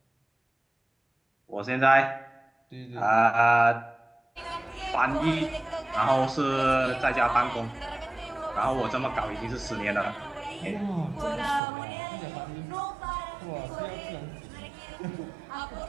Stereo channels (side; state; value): left; drops out; at 11.6 s